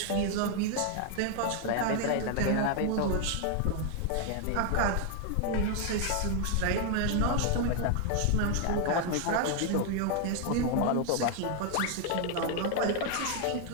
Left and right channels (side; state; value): both; different; correlation 0.00